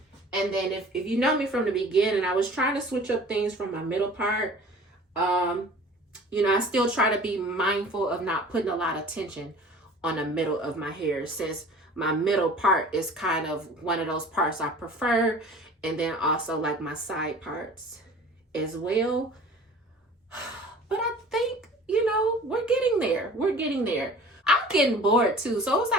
then if you know me from the beginning, I was trying to switch up things from my middle part. You know, I still try to be mindful of not putting a lot of tension on the middle of my hair, since my middle part is kind of one of those parts I prefer. And then also like my side parts as well. But I think, you know, we're getting there. We're getting there. I'm getting bored too. So it was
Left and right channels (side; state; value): both; normal; correlation 0.45